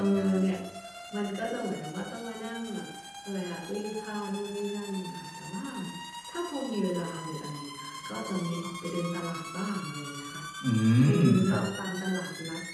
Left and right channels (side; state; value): both; identical; correlation 1.00